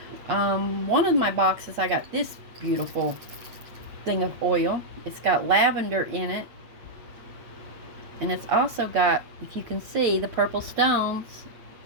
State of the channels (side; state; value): left; late; 8.5 ms